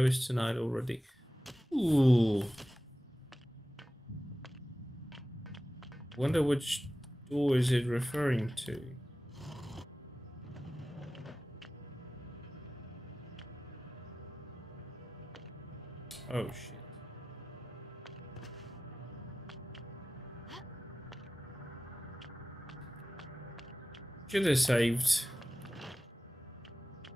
is tonight already. Ooh. Wonder which door is it referring to? Oh shit. Should have saved.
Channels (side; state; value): both; normal; correlation 0.95